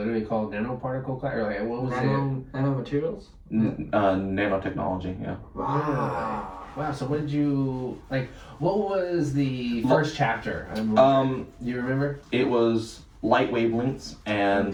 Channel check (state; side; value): identical; both; correlation 1.00